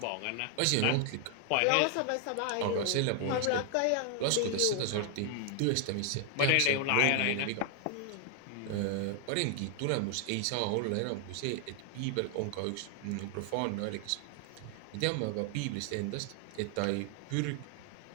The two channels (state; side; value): different; both; correlation 0.00